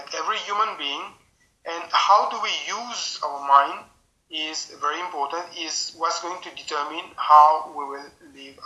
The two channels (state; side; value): identical; both; correlation 1.00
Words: every human being, and how do we use our mind is very important, is what's going to determine how we will live